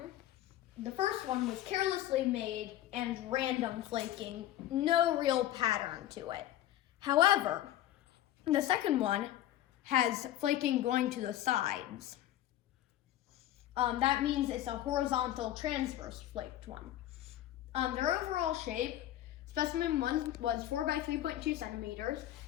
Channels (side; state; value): right; quieter; 13.3 dB